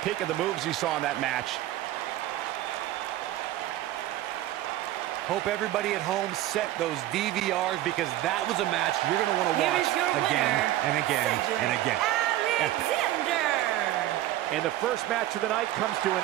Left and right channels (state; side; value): quieter; left; 14.5 dB